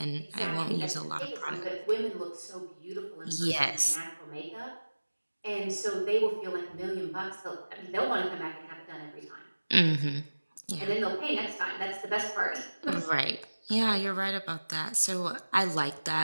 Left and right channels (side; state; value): both; inverted; correlation -1.00